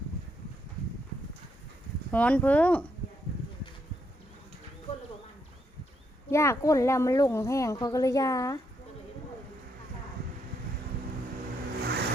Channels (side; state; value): both; normal; correlation 0.77